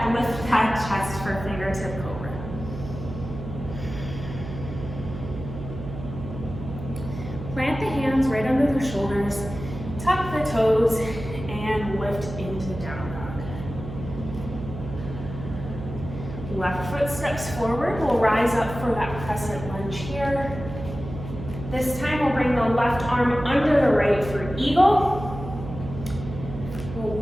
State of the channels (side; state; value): right; noise; hum, 10 dB below the sound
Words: lift that chest for fingertip cobra. Plant the hands right under the shoulders, tuck the toes, and lift into down dog. Left foot steps forward. We'll rise up for that crescent lunge here. This time we'll bring the left arm under the right for eagle. We'll